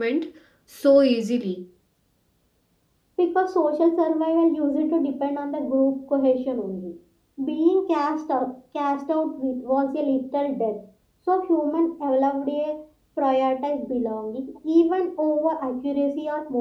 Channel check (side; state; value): both; identical; correlation 1.00